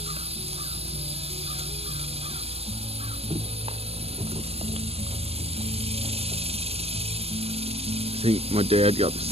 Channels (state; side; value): late; left; 0.29 ms